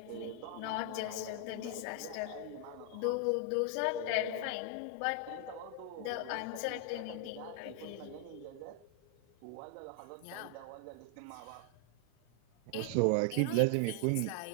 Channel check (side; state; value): both; different; correlation 0.00